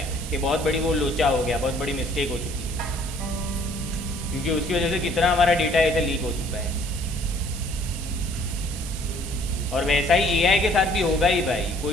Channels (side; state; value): right; noise; hiss, 12 dB below the sound